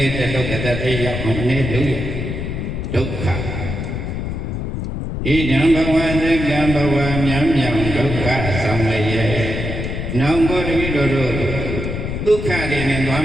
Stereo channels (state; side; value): noise; left; rumble, 4 dB below the sound